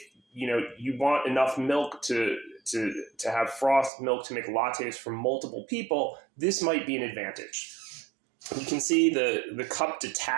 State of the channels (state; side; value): drops out; left; at 3.9 s